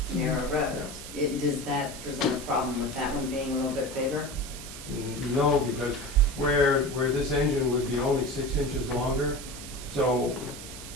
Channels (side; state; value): right; noise; hiss, 12 dB below the sound